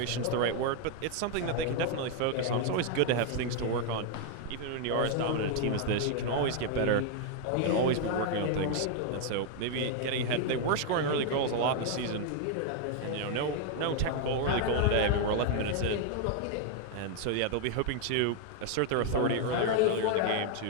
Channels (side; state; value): both; different; correlation 0.00